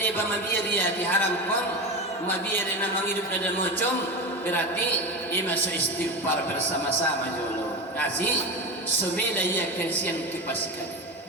ba mabiya dia diharam kon mabiya na mangidup na mocom berarti ima so istighfar bersama-sama jolo kasih sumila ya kensian kipasikan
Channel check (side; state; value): both; normal; correlation 0.23